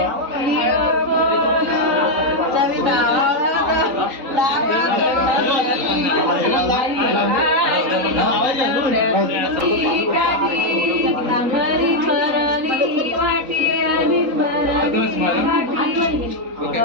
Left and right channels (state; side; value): late; left; 3.9 ms